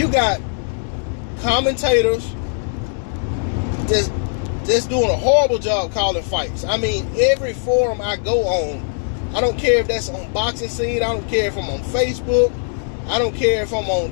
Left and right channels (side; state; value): right; silent; digital silence